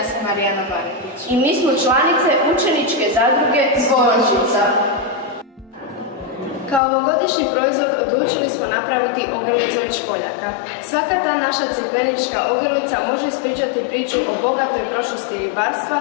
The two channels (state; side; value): drops out; right; at 6.8 s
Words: sam Marijana Maretić. I mi smo članice učeničke zadruge Zvončica. Kao ovogodišnji proizvod odlučili smo napraviti ogrlicu od školjaka. Svaka ta naša crikvenička ogrlica može ispričati priču o bogatoj prošlosti ribarstva